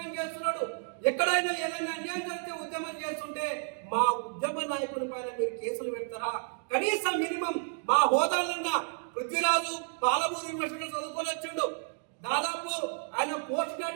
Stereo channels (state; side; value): silent; left; 57 dB below the other